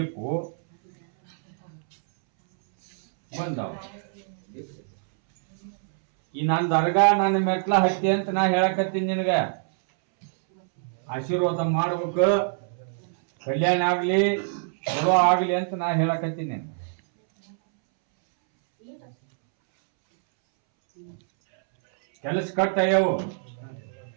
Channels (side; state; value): left; silent; 62 dB below the other